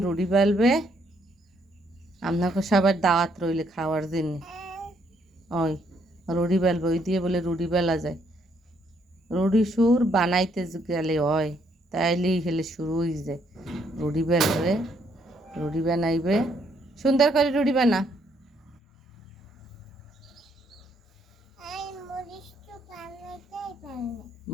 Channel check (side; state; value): both; normal; correlation 0.71